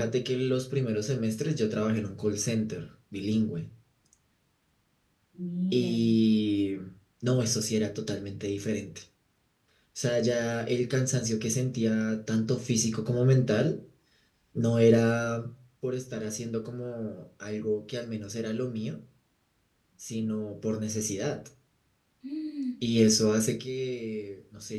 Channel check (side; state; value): both; identical; correlation 1.00